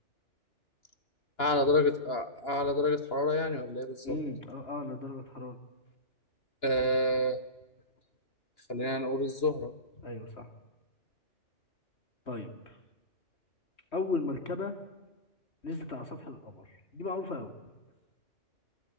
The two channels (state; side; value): late; right; 2.9 ms